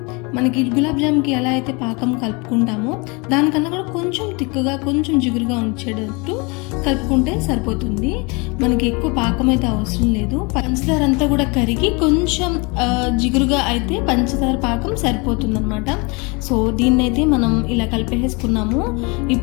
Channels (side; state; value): right; quieter; 28.9 dB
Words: మనకి గులాబ్ జామ్కి ఎలా అయితే పాకం కలుపుకుంటామో దానికన్నా కూడా కొంచెం తిక్కుగా, కొంచెం జిగురుగా ఉంచేటట్టు కలుపుకుంటే సరిపోతుంది. మనకి ఎక్కువ పాకం అయితే అవసరం లేదు. పంచదార అంతా కూడా కరిగి కొంచెం జిగురుగా అయితే పంచదార పాకం సరిపోతుంది అనమాట. సో దీన్నైతే మనం ఇలా కలిపేసుకున్నాము.